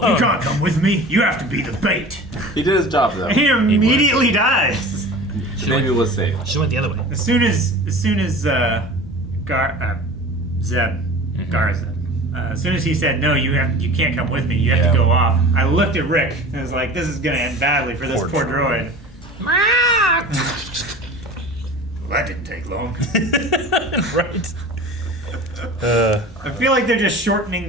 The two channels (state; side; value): normal; both; correlation 0.38